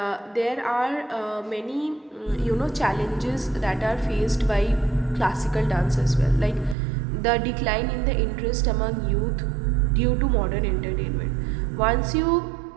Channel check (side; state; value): left; drops out; at 6.8 s